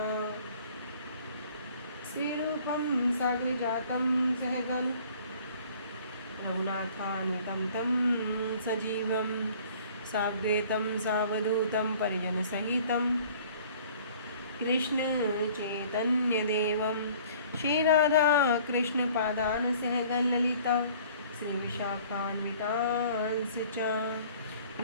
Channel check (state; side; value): inverted; both; correlation -0.52